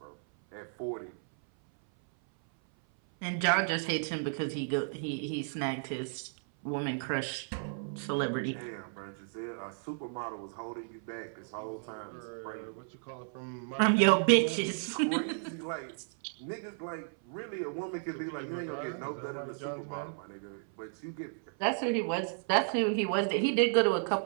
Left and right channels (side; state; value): left; silent; 56 dB below the other